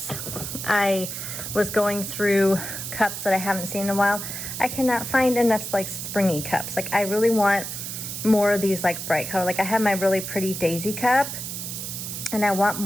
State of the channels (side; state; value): right; noise; hiss, 6 dB below the sound